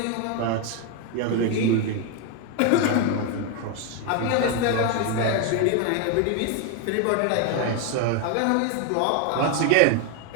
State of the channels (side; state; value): both; different; correlation 0.01